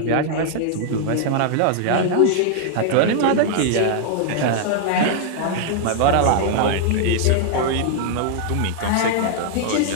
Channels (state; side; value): different; both; correlation -0.01